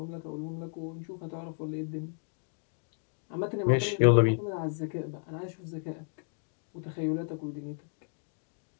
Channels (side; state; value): right; silent; 56 dB below the other